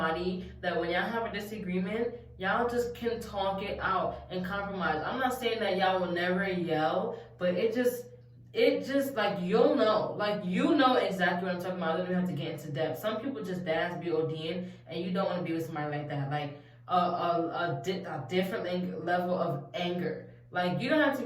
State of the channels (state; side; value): identical; both; correlation 1.00